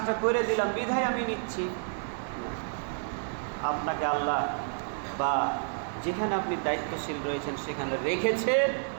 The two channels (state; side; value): silent; left; digital silence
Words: করে দিলাম বিধায় আমি নিচ্ছি। আপনাকে আল্লাহ বা যেখানে আপনি দায়িত্বশীল রয়েছেন সেখানে রেখেছে,